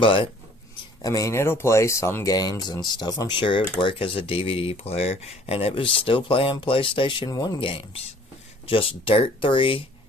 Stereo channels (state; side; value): normal; both; correlation 0.55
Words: I mean, it'll play some games and stuff. I'm sure it would work as a DVD player, and it was still playing PlayStation 1 games. Just Dirt 3.